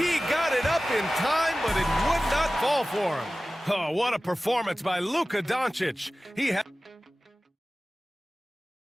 got it up in time, but it would not fall for him. Oh, what a performance by Luka Doncic. He had...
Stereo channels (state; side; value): normal; both; correlation 0.97